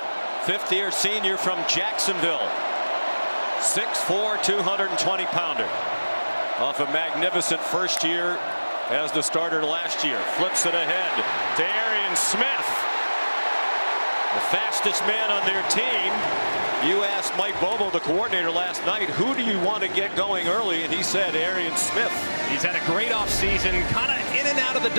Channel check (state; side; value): inverted; both; correlation -1.00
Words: fifth-year senior from Jacksonville. 6'4", 220-pounder. Off a magnificent first year as the starter last year. Flips it ahead to Arian Smith. The fastest man on their team. You asked Mike Bobo, the coordinator, last night, who do you want to get going early? And he said Arian Smith. He's had a great offseason, kind of in and out of the